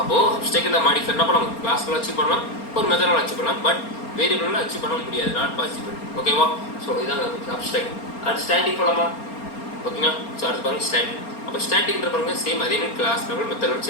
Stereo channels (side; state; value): right; late; 4.3 ms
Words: அப்ஸ்ட்ராக்ட் மாடிஃபை என்ன பண்ணலாம்? கிளாஸ்ல அச்சீவ் பண்ணலாம், ஒரு மெத்தடில் அச்சீவ் பண்ணலாம். பட் வேரியபிளில் அச்சீவ் பண்ண முடியாது. Not possible. ஓகேவா? ஸோ இதான் அப்ஸ்ட்ராக்ட். அடுத்து ஸ்டாட்டிக் போகலாமா? ஓகேங்களா? ஸோ அடுத்து பாருங்க ஸ்டாட்டிக். அப்போ ஸ்டாட்டிக்ன்ற பாருங்க சேம் அதே மாதிரி கிளாஸ் லெவல் மெத்தட்